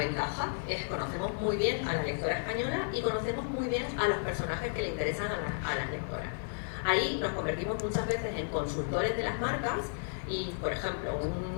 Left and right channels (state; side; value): silent; right; 56 dB below the other